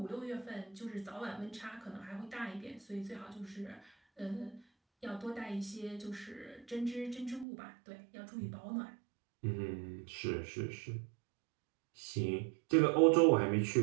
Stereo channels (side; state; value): left; drops out; at 7.5 s